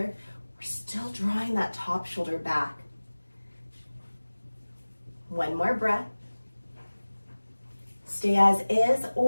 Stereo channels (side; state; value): both; inverted; correlation -1.00